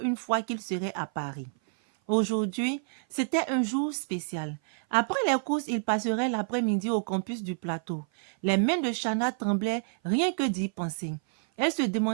une fois qu'il serait à Paris. Aujourd'hui, c'était un jour spécial. Après les courses, il passerait l'après-midi au campus du plateau. Les mains de Chana tremblaient rien que d'y penser. Elle se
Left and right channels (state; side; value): silent; left; 56 dB below the other